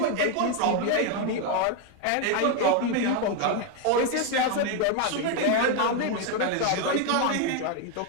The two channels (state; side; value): different; both; correlation 0.01